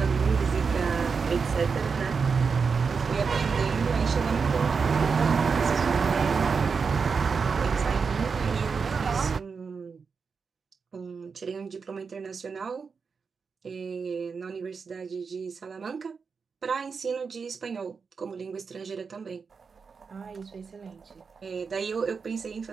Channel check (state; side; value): quieter; left; 5.4 dB